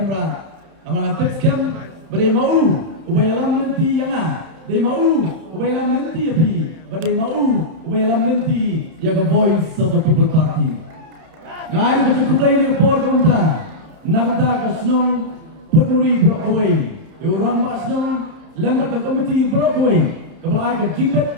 amang tips cam badai mau ubay alam nanti yang dai mau ubay alam nanti api badai mau ubay alam nanti ya the voice of the people party ngari ke cukup play ni por kumta nagda ka snong puturi bro away orang masnong lembar ke komiti bro away kebalai ke jinglet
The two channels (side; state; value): left; late; 31 ms